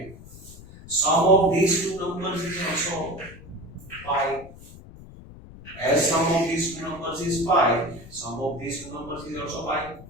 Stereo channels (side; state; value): left; noise; rumble, 17 dB below the sound